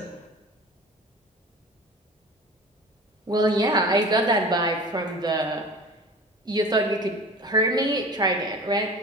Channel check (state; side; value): normal; both; correlation 0.39